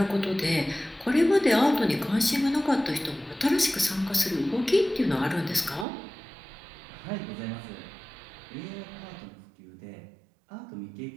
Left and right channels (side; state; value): left; drops out; at 5.9 s